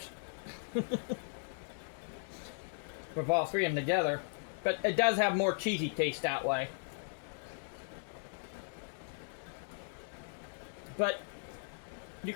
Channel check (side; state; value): right; silent; digital silence